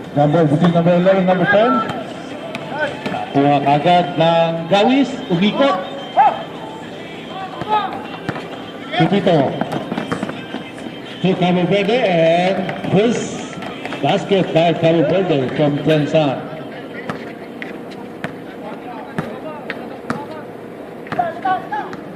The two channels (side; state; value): both; identical; correlation 1.00